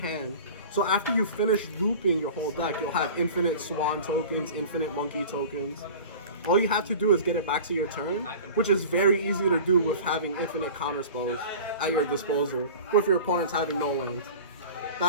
So after you finish looping your whole deck, you'll have infinite Swan tokens, infinite Monkey tokens. All you have to do is get it back to your turn, which is very easy to do with having infinite counterspells at your disposal, with your opponents having no lands.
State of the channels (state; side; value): inverted; both; correlation -0.39